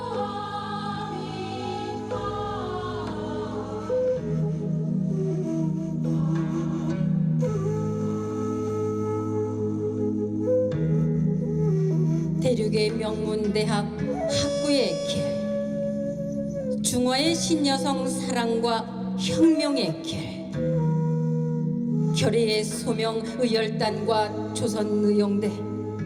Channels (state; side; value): identical; both; correlation 1.00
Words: 대륙의 명문대학 학구의 길, 중화의 신여성 사랑과 혁명의 길, 결의의 소명 의열단과 조선의용대,